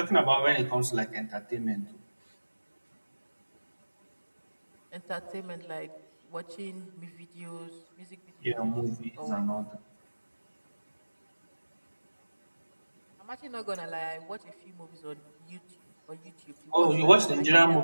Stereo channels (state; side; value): inverted; both; correlation -1.00